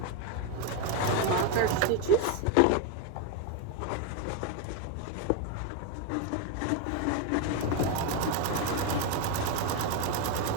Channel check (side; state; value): both; different; correlation 0.02